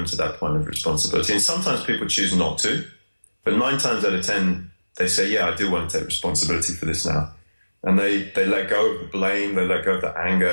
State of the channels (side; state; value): both; inverted; correlation -1.00